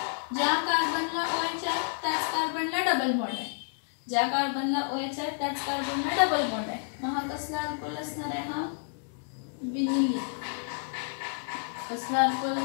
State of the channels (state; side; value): silent; right; digital silence